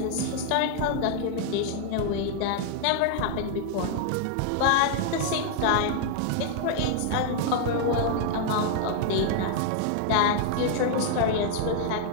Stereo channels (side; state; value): both; different; correlation 0.00